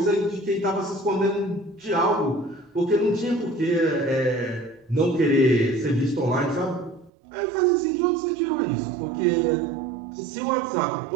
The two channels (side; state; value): left; drops out; at 7.1 s